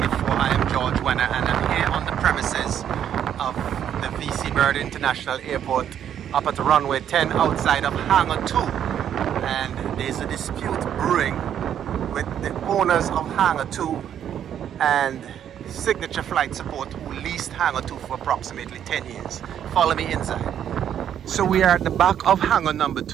I am George Wenner and I'm here on the premises of the VC Bird International Airport up at Runway 10 outside of Hangar 2. And there's a dispute brewing with the owners of Hangar 2 and Signature Flight Support, who leased Hangar 2 for approximately 10 years. Follow me inside. So we are at the back of hangar number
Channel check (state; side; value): quieter; left; 9.6 dB